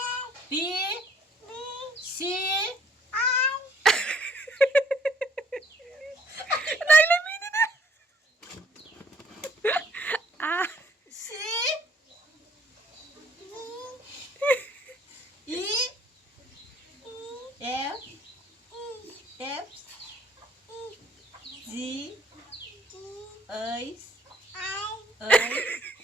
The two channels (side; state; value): both; normal; correlation 0.60